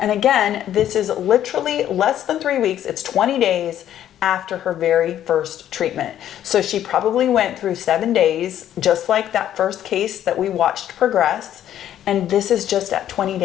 again, this is literally less than 3 weeks. It's 20 days after her very first treatment. So she probably went through 7 days, just like that first case that we watched progress. And this is just at 20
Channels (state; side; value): quieter; right; 11.2 dB